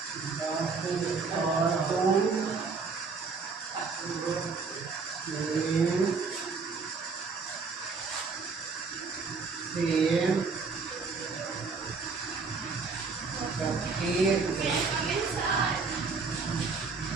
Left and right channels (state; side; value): quieter; left; 4.7 dB